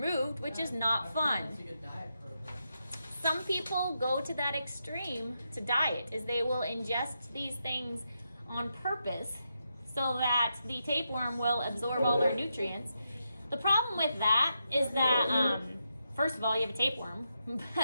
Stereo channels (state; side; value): inverted; both; correlation -0.84